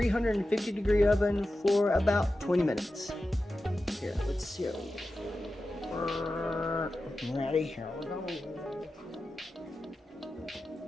oven for about 20 minutes. Here, let's see. Ready? Here we go.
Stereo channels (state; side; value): normal; both; correlation 0.93